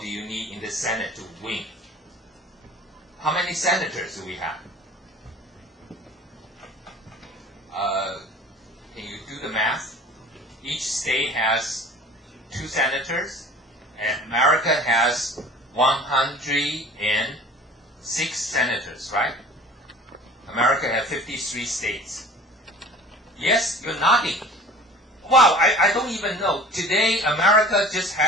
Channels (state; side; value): normal; both; correlation 0.44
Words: do you need in the Senate to win? How many senators do we have? Can you do the math? Each state has 2 senators, and America has 106 senators, right? America has 53 states. Yes, you're nodding. Wow, I don't even know. Today, America just